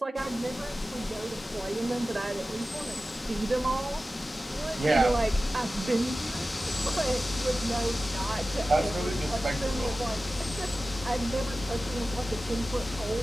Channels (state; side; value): normal; both; correlation 0.95